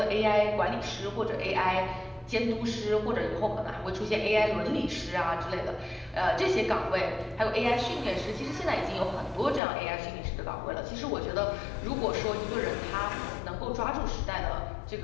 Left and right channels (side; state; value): right; drops out; at 9.6 s